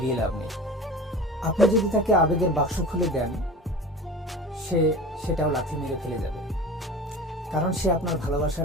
লাভ নেই। আপনি যদি তাকে আবেগের বাক্স খুলে দেন, সে সেটাও লাথি মেরে ফেলে যাবে, কারণ সে আপনার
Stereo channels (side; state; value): both; normal; correlation 0.35